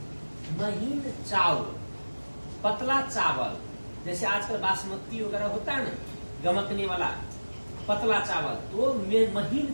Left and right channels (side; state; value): both; inverted; correlation -1.00